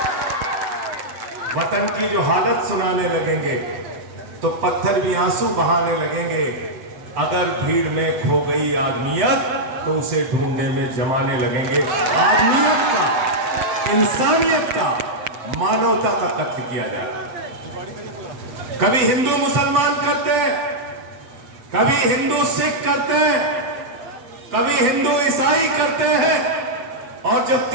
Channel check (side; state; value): left; late; 7.9 ms